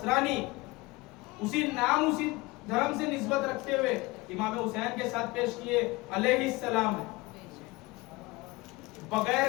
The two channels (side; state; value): right; quieter; 22.6 dB